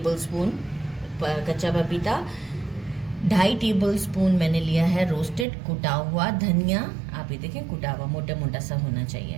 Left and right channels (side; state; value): left; drops out; at 5.5 s